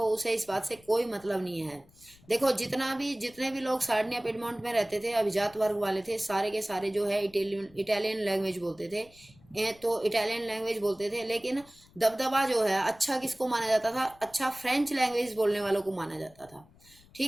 उसे इस बात से कोई मतलब नहीं है। देखो जितने भी लोग सार्डिनिया पिडमोंट में रहते थे, अभिजात वर्ग वाले थे, सारे के सारे जो है इटालियन लैंग्वेज बोलते थे। तो इटालियन लैंग्वेज बोलते थे, लेकिन दबदबा जो है अच्छा किसको माना जाता था, अच्छा फ्रेंच लैंग्वेज बोलने वालों को माना जाता था।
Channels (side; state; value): left; noise; rumble, 27 dB below the sound